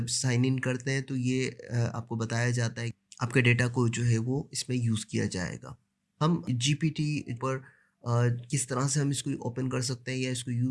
साइन इन करते हैं तो ये आपको बताया जाता है, आपके डेटा को जो है वो इसमें यूज़ किया जाएगा। हम जीपीटी पर किस तरह से हम इसको ओपन कर सकते हैं या इसको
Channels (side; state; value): both; identical; correlation 1.00